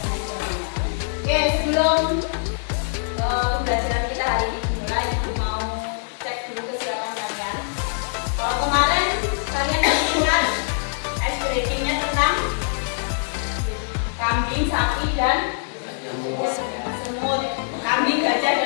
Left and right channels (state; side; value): silent; right; digital silence